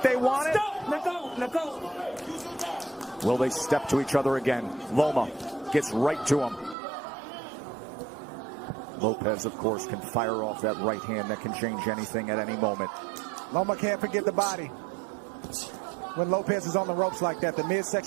they want it? Let go. Will they step to each other again? Loma gets right to him. Lopez, of course, can fire off that right hand that can change anything at any moment. Loma can't forget the body. When Lopez is on the ropes like that, the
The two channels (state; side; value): drops out; left; at 6.8 s